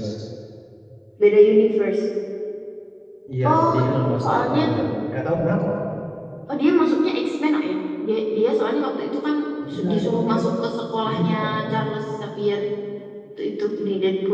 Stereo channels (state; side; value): identical; both; correlation 1.00